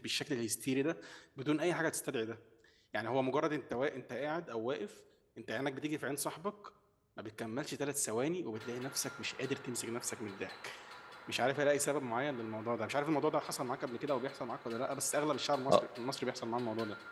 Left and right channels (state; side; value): identical; both; correlation 1.00